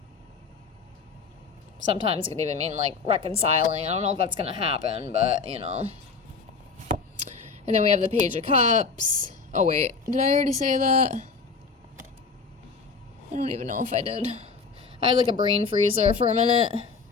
Sometimes it could even mean like reconciling. I don't know if that's going to happen, but you know. And then we have the Page of Cups. Oh, wait. Did I already say that? I don't even know if I did. I had like a brain freezer for a minute.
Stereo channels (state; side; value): quieter; right; 4.9 dB